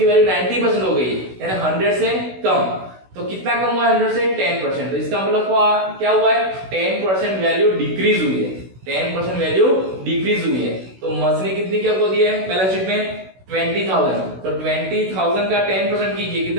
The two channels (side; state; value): left; late; 16 ms